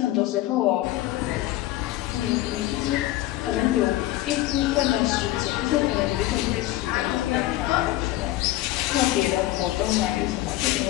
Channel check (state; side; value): quieter; right; 16.0 dB